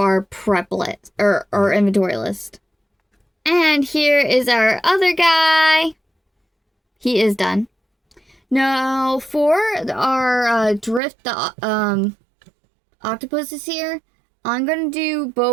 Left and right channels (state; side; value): drops out; left; at 11.0 s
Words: prep list, or our inventory list. And here is our other guy. He is done. Now, for our drift octopuses here, I'm going to do